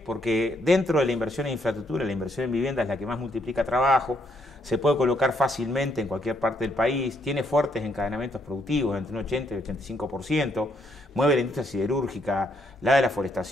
Porque dentro de la inversión en infraestructura, la inversión en vivienda es la que más multiplica trabajo, se puede colocar fácilmente en cualquier parte del país, tiene fuertes encadenamientos productivos, entre un 80 y 85%, mueve la industria siderúrgica, la de la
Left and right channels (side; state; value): both; normal; correlation 0.73